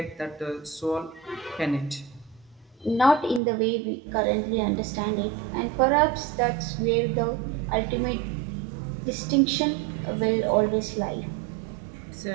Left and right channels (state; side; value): drops out; left; at 3.4 s